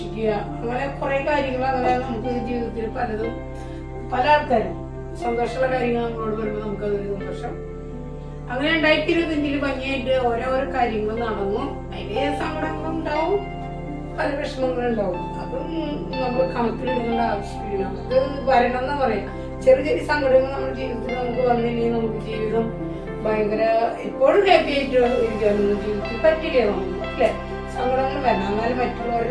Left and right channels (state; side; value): identical; both; correlation 1.00